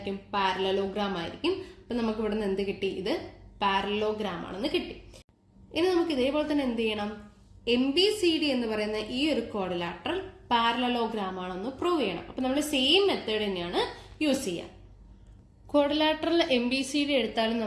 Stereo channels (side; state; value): both; identical; correlation 1.00